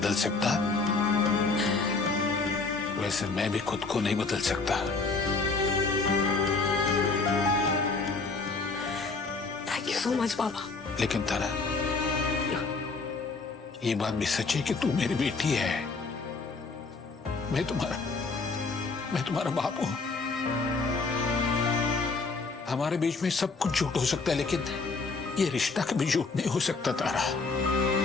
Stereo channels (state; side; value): quieter; right; 4.1 dB